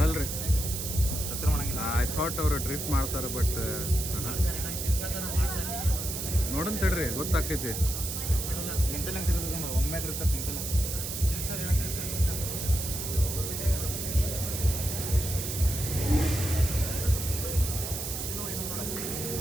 ಮಾಡಂಗಿಲ್ಲ. ಐ ಥಾಟ್ ಅವರು ಡ್ರಿಫ್ಟ್ ಮಾಡ್ತಾರೆ, ಬಟ್ ನೋಡೋಣ ತಡ್ರಿ, ಗೊತ್ತಾಕೈತಿ. ನಿಂತಲ್ಲ ಒಮ್ಮೆ ಇರ್ತಾರೆ, ನಿಂತಲ್ಲ.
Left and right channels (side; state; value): right; noise; hiss, 4 dB below the sound